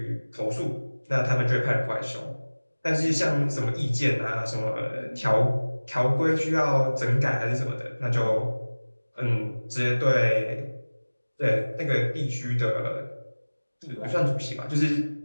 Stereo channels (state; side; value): inverted; both; correlation -1.00